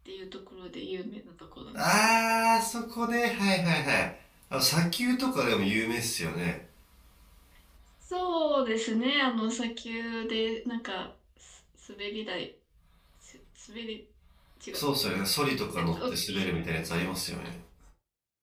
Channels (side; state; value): both; identical; correlation 1.00